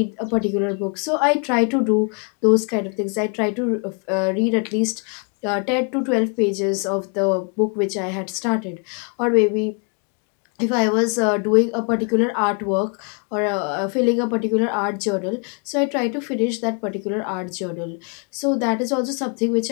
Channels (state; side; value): quieter; right; 38.0 dB